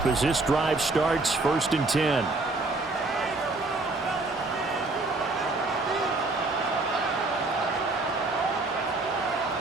as this drive starts 1st and 10.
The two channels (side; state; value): left; quieter; 3.2 dB